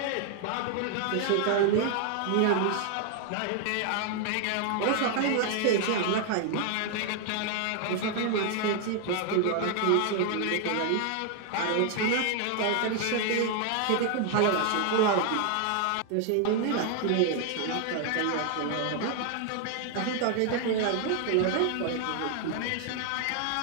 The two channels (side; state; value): both; different; correlation 0.00